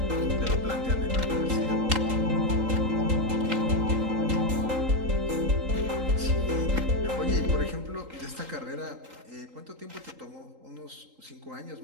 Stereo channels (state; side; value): late; left; 3.8 ms